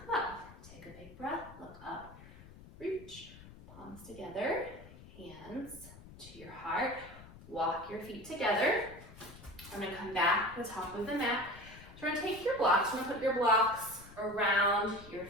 up. Take a big breath, look up, reach, palms together, hands to your heart. Walk your feet together. I'm going to come back to the top of the mat. So we're going to take your blocks, we're going to put your blocks around your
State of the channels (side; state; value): left; noise; rumble, 18 dB below the sound